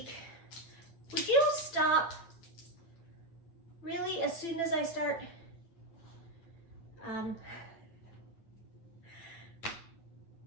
Would you stop really as soon as I start?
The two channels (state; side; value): late; right; 9.0 ms